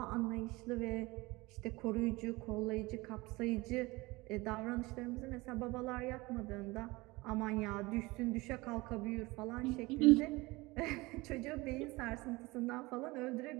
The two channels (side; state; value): left; quieter; 22.3 dB